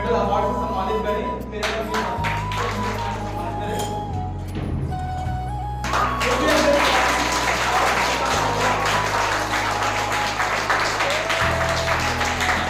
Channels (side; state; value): both; identical; correlation 1.00